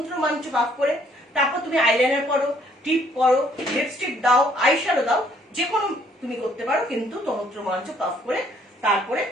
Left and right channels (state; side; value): normal; both; correlation 0.64